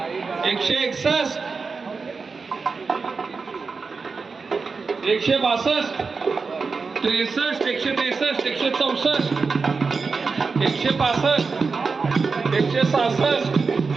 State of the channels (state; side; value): quieter; left; 4.7 dB